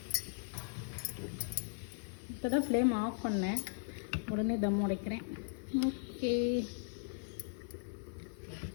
இப்போ தான் ஃப்ளேம் ஆஃப் பண்ணேன், உடனே தம் உடைக்கிறேன். ஓகே,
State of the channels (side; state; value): right; silent; 52 dB below the other